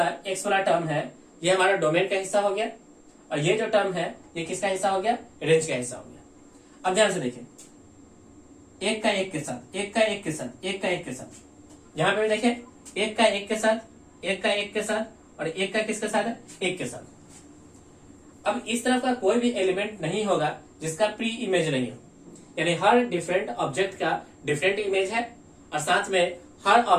एक्स वाला टर्म है ये हमारा डोमेन का हिस्सा हो गया, और ये जो टर्म है ये किसका हिस्सा हो गया, रेंज का हिस्सा हो गया। अब ध्यान से देखिए, एक का एक के साथ, एक का एक के साथ, एक का एक के साथ, यहां पे देखिए एक का एक के साथ, एक का एक के साथ, और एक का किसके साथ है, एक के साथ। अब इस तरफ का कोई भी एलिमेंट नहीं होगा जिसका प्री इमेज नहीं हो, यानी हर डिफरेंट ऑब्जेक्ट का डिफरेंट इमेज है और साथ में हर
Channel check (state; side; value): identical; both; correlation 1.00